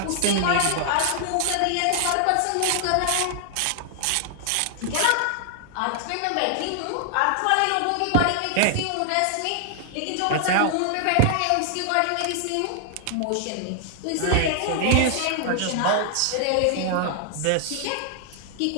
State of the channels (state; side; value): different; both; correlation 0.00